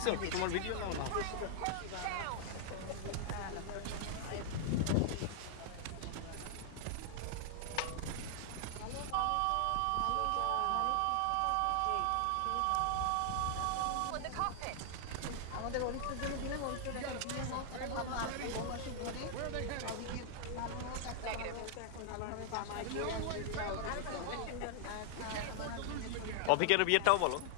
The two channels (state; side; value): different; both; correlation 0.00